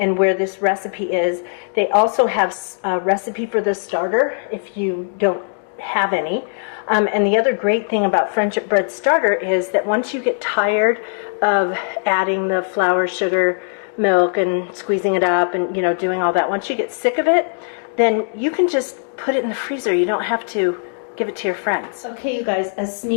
where this recipe is. They also have a recipe for the starter if you don't have any. And the other great thing about Friendship Bread Starter is that once you get tired of adding the flour, sugar, milk, and squeezing it up and, you know, doing all that, once you get sick of it, then you can just put it in the freezer. You don't have to give it to your friends. Okay, you guys, a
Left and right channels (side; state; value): right; silent; digital silence